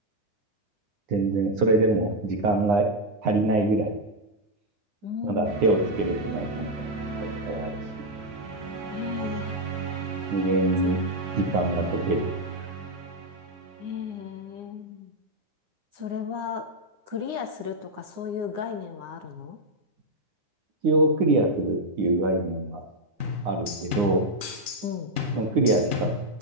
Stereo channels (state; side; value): late; left; 9.7 ms